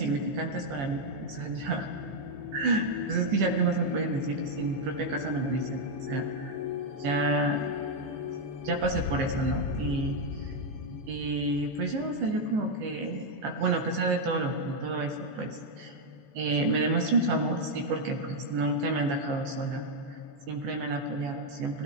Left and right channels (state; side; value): late; left; 14 ms